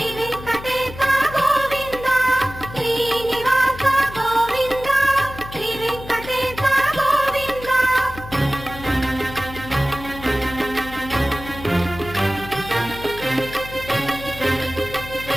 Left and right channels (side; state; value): left; noise; hum, 14 dB below the sound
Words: వెంకటేశ గోవింద శ్రీనివాస గోవింద శ్రీ వెంకటేశ గోవింద